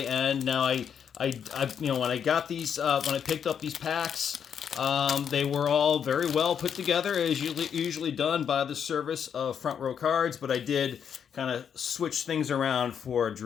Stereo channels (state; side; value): quieter; right; 7.8 dB